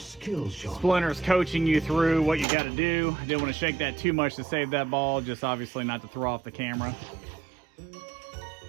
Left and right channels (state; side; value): drops out; left; at 2.5 s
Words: shot. Splinter's coaching you through what you got to do. I didn't want to shake that too much to save that ball, just obviously not to throw off the camera.